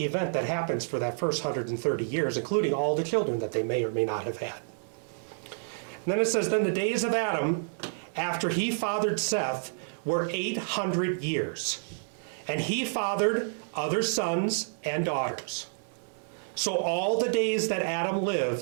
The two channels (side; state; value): left; silent; 58 dB below the other